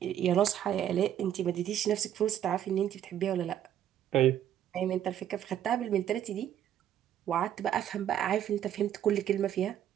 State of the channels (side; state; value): left; quieter; 10.7 dB